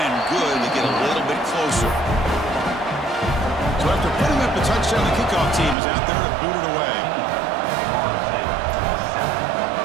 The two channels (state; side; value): drops out; left; at 5.8 s